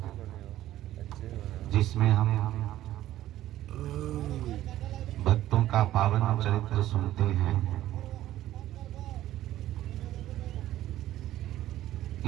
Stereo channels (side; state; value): left; quieter; 13.9 dB